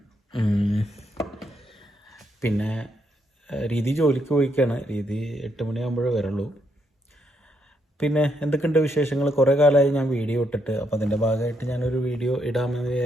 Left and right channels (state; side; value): normal; both; correlation 0.77